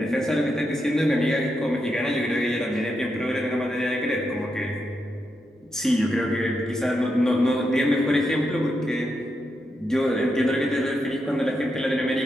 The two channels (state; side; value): normal; both; correlation 0.84